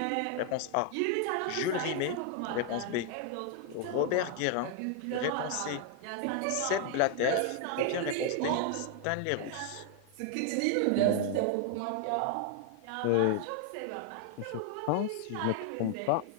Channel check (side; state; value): both; different; correlation 0.00